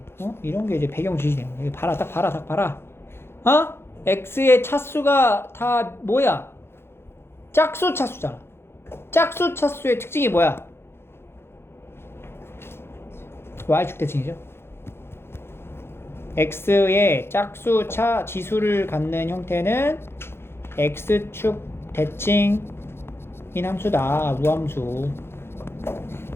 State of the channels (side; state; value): right; late; 0.12 ms